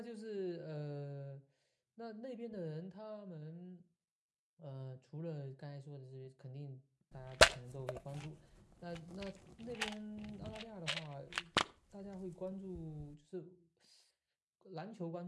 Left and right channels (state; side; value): identical; both; correlation 1.00